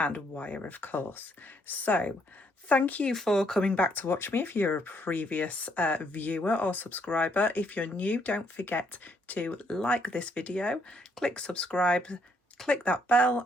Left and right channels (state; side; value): normal; both; correlation 0.71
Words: wire, of course. So thank you for coming back to watch me if you're a previous viewer or subscriber. If you're new, don't forget to like this video, click subscribe, click that bell